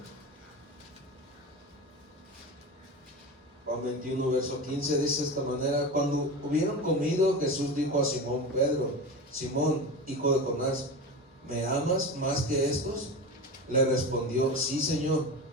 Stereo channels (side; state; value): both; normal; correlation 0.26